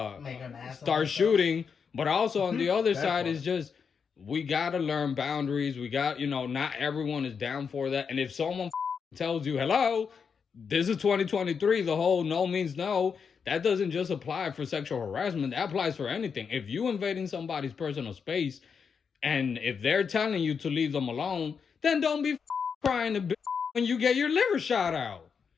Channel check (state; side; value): quieter; right; 6.2 dB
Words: Make an ass of start ourselves. shooting. But also on the other That side part. is just, we got to learn boundaries. We got, you know, not everyone is down for that. And if someone tells you, hello, this is 2023, the whole no means no, that doesn't just apply for sexual harassment. That applies for anything. If you invading somebody's personal space and if they're telling you to leave them alone, then don't be crying to when you get your liver shot out.